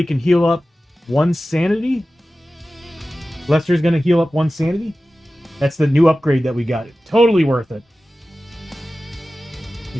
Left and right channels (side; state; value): both; normal; correlation 0.95